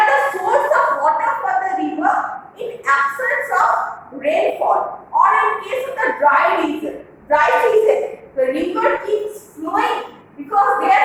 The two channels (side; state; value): both; identical; correlation 1.00